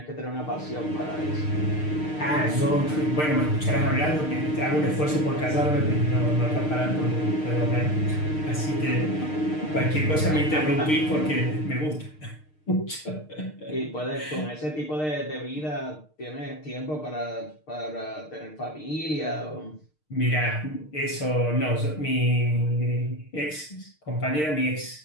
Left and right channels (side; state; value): right; late; 6.6 ms